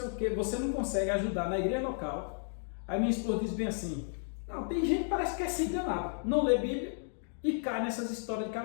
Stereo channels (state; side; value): silent; right; digital silence